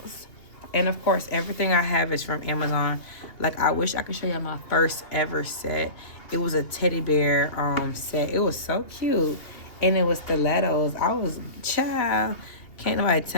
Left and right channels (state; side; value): late; right; 2.8 ms